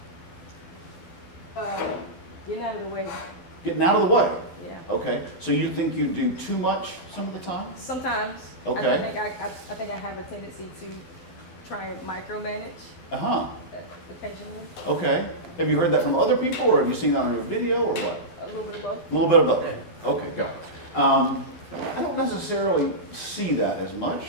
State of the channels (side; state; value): right; late; 12 ms